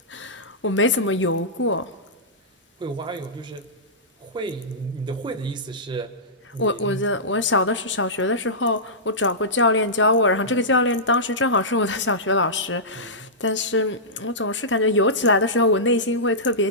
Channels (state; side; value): normal; both; correlation -0.16